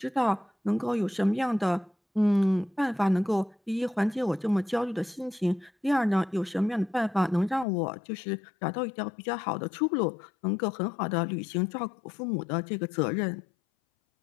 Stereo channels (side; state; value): right; drops out; at 7.7 s